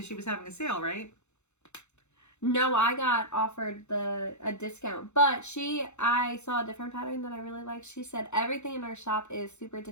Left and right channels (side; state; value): right; late; 0.82 ms